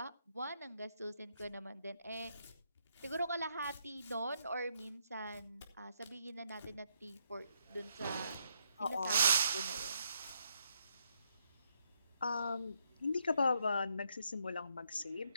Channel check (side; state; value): both; inverted; correlation -0.76